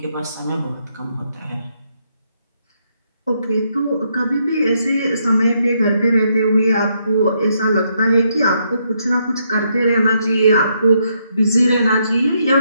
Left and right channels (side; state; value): both; inverted; correlation -0.76